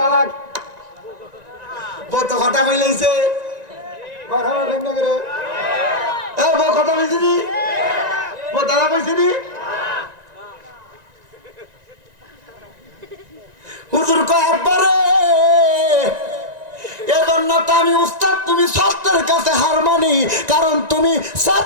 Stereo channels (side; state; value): left; late; 1.9 ms